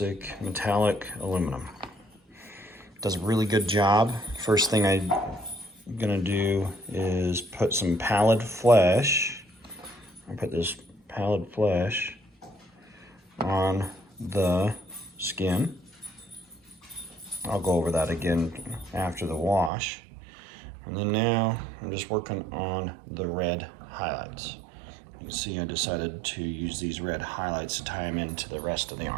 metallic, aluminum. Does a really good job. First thing I'm gonna do is put some pallid flesh. I put this pallid flesh on the skin. I'll go over that again after the wash. And then now I'm just working on the red highlights. You can see I decided to use these red highlights to tie them into the rest of the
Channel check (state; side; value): drops out; left; at 19.7 s